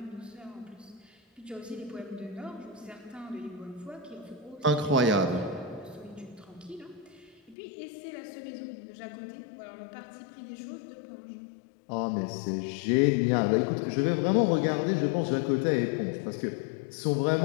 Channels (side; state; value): right; drops out; at 7.6 s